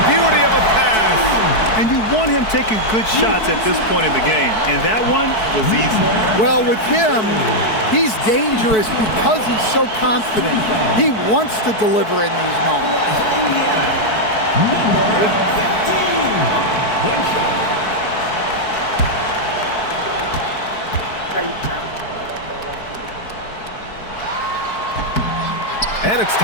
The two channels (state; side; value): late; right; 4.6 ms